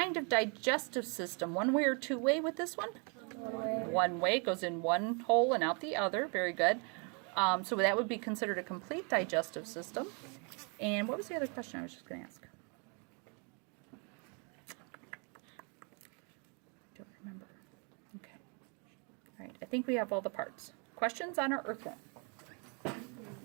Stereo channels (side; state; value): left; quieter; 36.0 dB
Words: of digestive system? One way or two way with this one? One way. Goes in one hole and out the other. Very good. So that would be considered a complete digestive system. And what was the other question I was just going to ask? Don't remember. Okay. All right, I think we have all the parts. Questions on our earthworm?